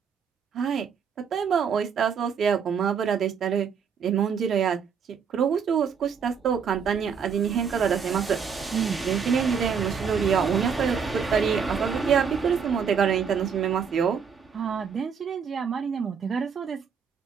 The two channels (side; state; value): left; quieter; 6.6 dB